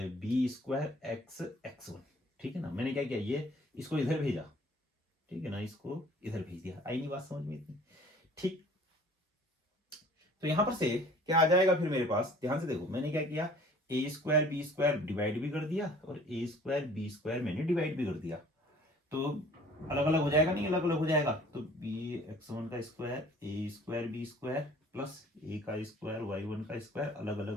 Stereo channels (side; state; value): both; normal; correlation 0.51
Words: B square x1। ठीक है ना? मैंने क्या किया? ये इसको इधर भेजा, ठीक है ना, इसको इधर भेज दिया। आई नहीं बात समझ में इतनी? ठीक, तो यहां पर से क्या आ जाएगा फिर मेरे पास? ध्यान से देखो, मैंने क्या किया? ए स्क्वायर बी स्क्वायर डिवाइड भी कर दिया, और ए स्क्वायर बी स्क्वायर मैंने डिवाइड भी कर दिया, तो अलग अलग हो जाएगा? नहीं अलग अलग हो जाएगा। तो बी x1 का स्क्वायर ए स्क्वायर बी स्क्वायर प्लस ए का स्क्वायर y1 का स्क्वायर अलग अलग